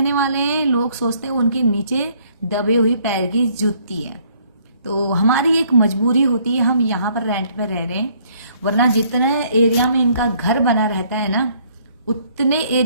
वाले हैं लोग सोचते हैं उनके नीचे दबे हुई पैर की जूती है। तो हमारी एक मजबूरी होती है, हम यहाँ पर रेंट पे रह रहे हैं, वरना जितने एरिया में इनका घर बना रहता है ना उतने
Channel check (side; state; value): both; inverted; correlation -0.64